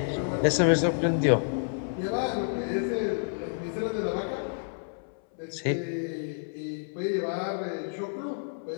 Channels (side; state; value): right; silent; 58 dB below the other